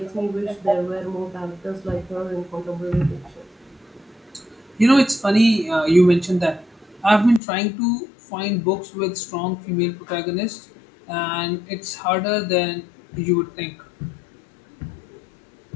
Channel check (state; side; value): drops out; right; at 7.4 s